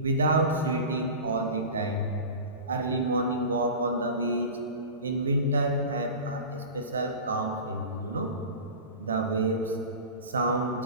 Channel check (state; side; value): inverted; both; correlation -0.33